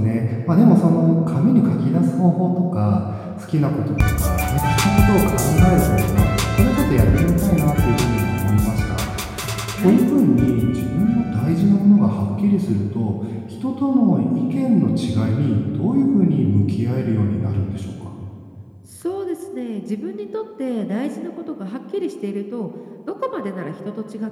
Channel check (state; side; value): identical; both; correlation 1.00